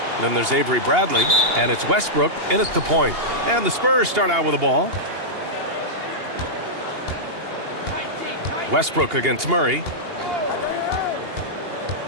Then there's Avery Bradley. And it's Westbrook in at the point. And the Spurs start out with the ball. Westbrook against Murray.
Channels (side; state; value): left; late; 2.8 ms